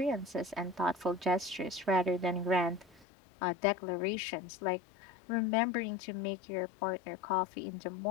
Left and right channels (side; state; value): right; drops out; at 3.1 s